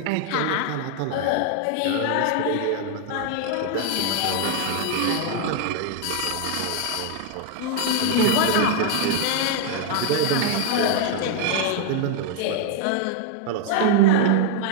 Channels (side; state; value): both; different; correlation 0.00